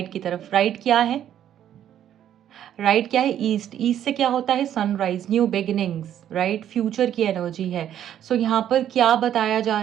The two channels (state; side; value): quieter; left; 10.6 dB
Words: की तरफ। राइट क्या है, राइट क्या है, ईस्ट। ईस्ट से क्या होता है, sunrise, new beginnings, right, future की एनर्जी है। सो यहाँ पर क्या बताया जा